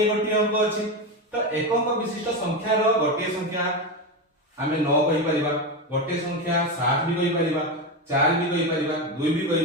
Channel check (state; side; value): normal; both; correlation 0.15